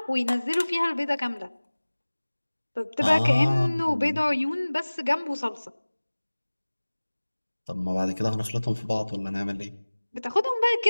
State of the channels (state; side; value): inverted; both; correlation -1.00